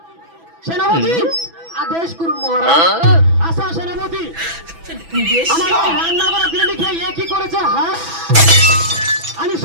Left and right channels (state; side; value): late; left; 6.0 ms